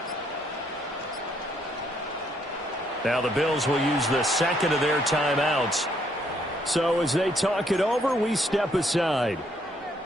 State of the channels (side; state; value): both; normal; correlation 0.70